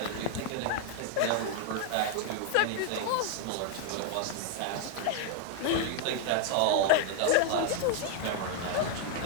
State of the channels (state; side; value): different; both; correlation 0.00